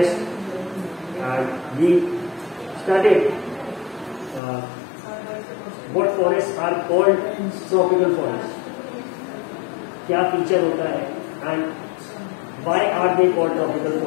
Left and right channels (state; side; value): drops out; right; at 4.4 s